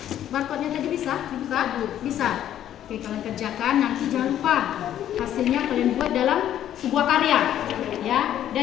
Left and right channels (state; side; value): quieter; right; 11.2 dB